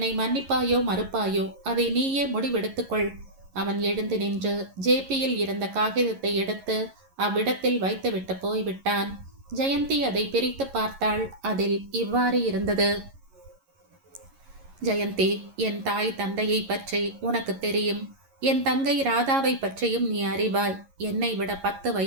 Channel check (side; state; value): left; late; 11 ms